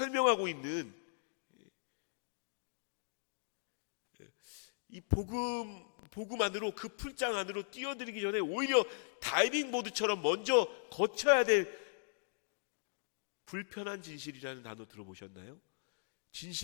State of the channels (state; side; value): silent; right; digital silence